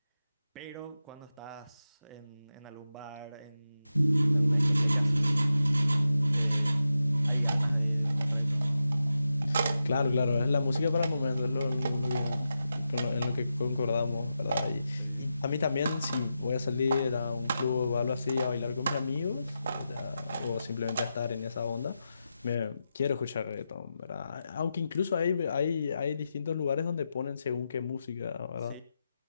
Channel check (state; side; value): inverted; both; correlation -0.89